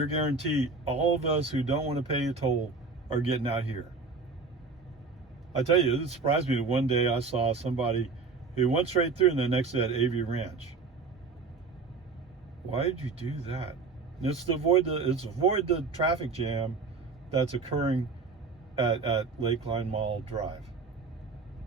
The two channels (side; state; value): left; quieter; 4.4 dB